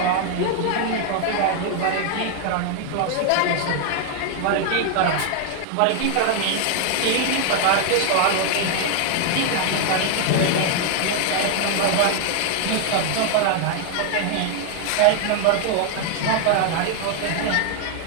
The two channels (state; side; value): different; both; correlation 0.00